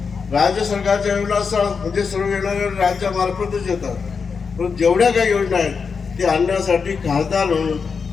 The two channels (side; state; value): right; quieter; 5.5 dB